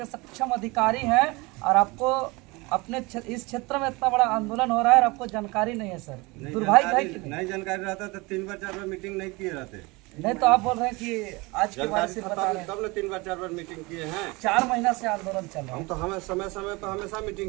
सक्षम अधिकारी हैं और आपको अपने इस क्षेत्र में इतना बड़ा आंदोलन हो रहा है और आपको जानकारी नहीं है सर। दुर्भाग्य है कि नहीं जानकारी रहता तो 3 बार 4 बार मीटिंग नहीं किए रहते। नहीं तो आप बोल रहे हैं कि आज के बाद से बता रहे हैं तब ने 3 बार 4 बार मीटिंग किए हैं। 4 महीना से आंदोलन चल रहा है। हम तो हमें समय समय पर हमेशा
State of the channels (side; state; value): left; quieter; 24.8 dB